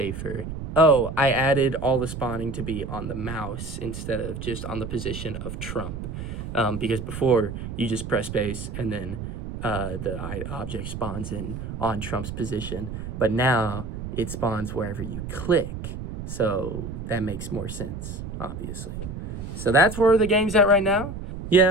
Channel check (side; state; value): right; noise; rumble, 7 dB below the sound